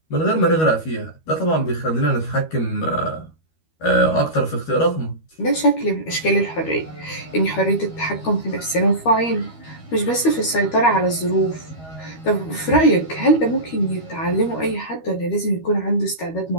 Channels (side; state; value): right; late; 13 ms